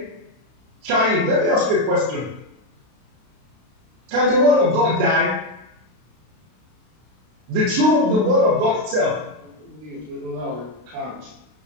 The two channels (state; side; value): late; left; 32 ms